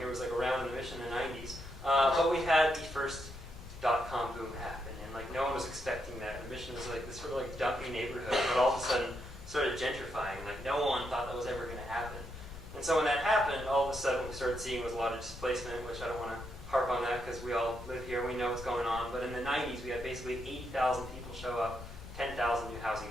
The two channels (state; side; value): noise; left; rumble, 13 dB below the sound